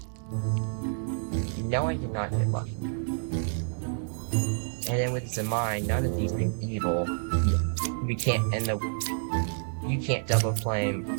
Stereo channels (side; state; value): left; silent; digital silence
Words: No, I did not get lucky. And then with this in mind, none of these being evil, we can't, you can't double flame,